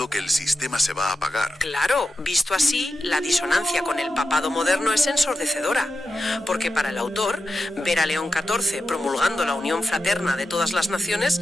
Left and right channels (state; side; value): normal; both; correlation 0.91